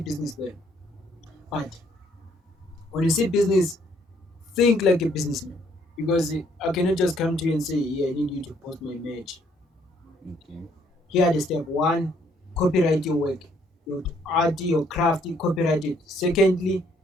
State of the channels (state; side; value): normal; both; correlation 0.67